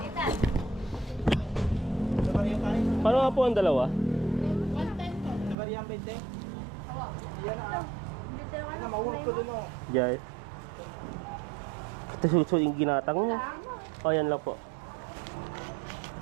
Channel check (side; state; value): left; drops out; at 5.6 s